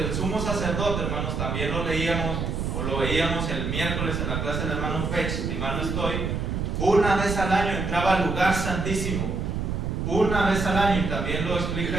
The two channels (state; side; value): noise; right; rumble, 2 dB below the sound